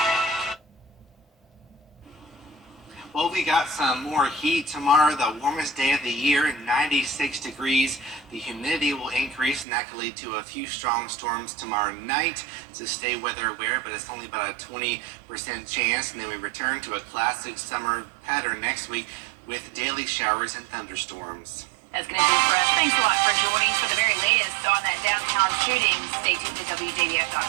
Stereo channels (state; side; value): drops out; left; at 9.7 s